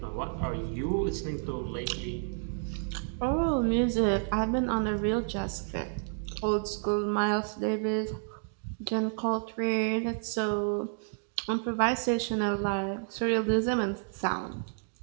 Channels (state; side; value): silent; left; digital silence